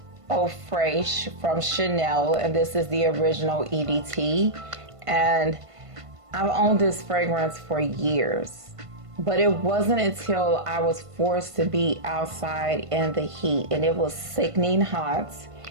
Au Fraiche from Chanel, and this is the original EDT. And I've owned this fragrance for years, but it wasn't until I was forced to be outside in the heat and it was sickening hot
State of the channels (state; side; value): late; left; 1.5 ms